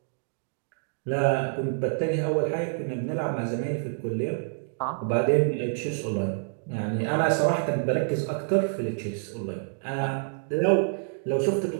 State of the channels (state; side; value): silent; left; digital silence